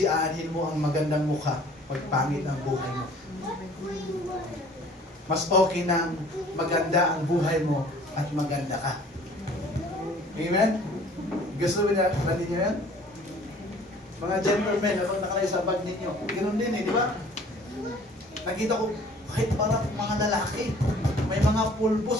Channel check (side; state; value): both; normal; correlation 0.52